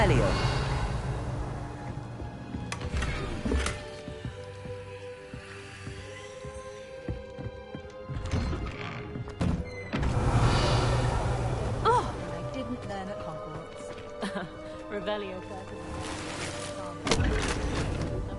Oh, I didn't learn at Hogwarts. Revelio.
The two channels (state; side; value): identical; both; correlation 1.00